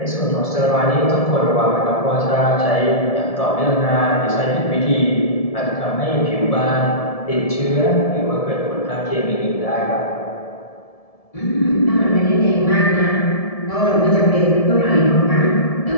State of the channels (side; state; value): right; late; 1.7 ms